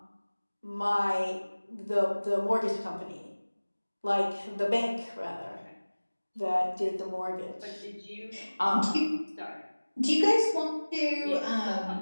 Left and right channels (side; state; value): both; inverted; correlation -1.00